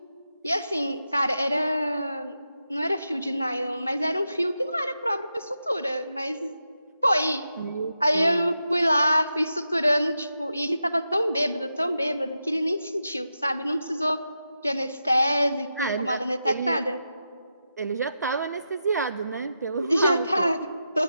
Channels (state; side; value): inverted; both; correlation -0.88